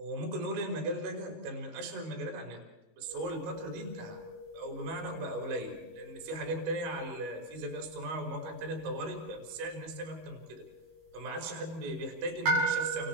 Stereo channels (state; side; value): late; left; 19 ms